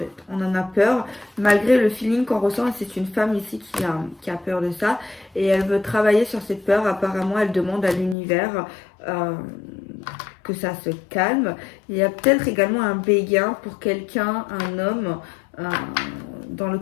On en a peur malgré le feeling qu'on ressent. Et c'est une femme ici qui a peur de ça. Et elle veut travailler sur cette peur. Apparemment, elle demande à l'univers que ça se calme. Il y a peut-être également un béguin pour quelqu'un, un homme, dans le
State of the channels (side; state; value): right; drops out; at 8.2 s